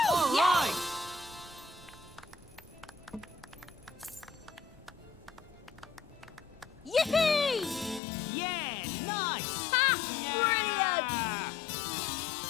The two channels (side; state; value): right; drops out; at 8.0 s